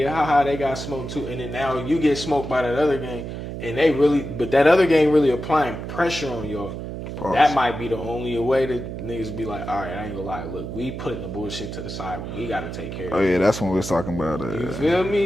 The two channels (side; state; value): right; noise; hum, 7 dB below the sound